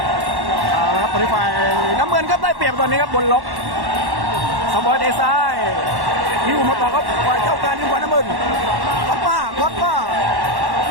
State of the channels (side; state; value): left; late; 1.1 ms